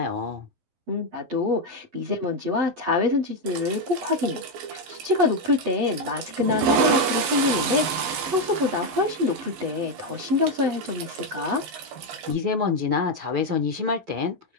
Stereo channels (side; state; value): left; late; 11 ms